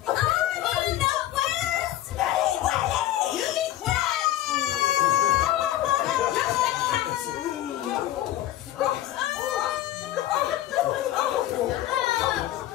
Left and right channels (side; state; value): right; quieter; 13.8 dB